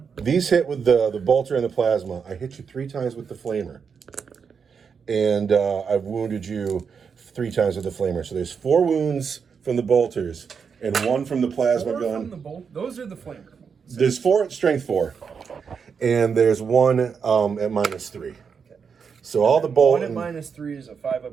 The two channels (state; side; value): quieter; left; 6.2 dB